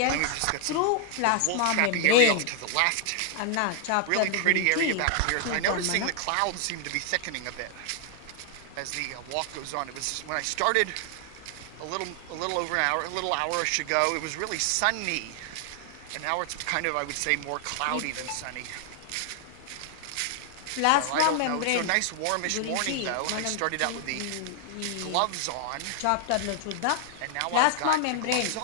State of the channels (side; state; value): both; different; correlation 0.00